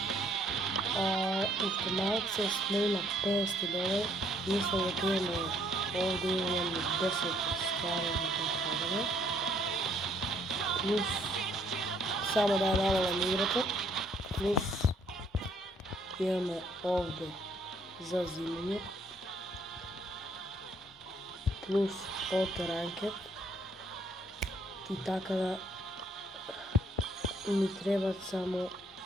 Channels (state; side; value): normal; both; correlation 0.65